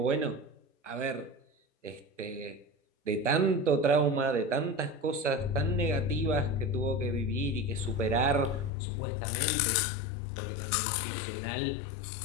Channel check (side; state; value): right; drops out; at 8.7 s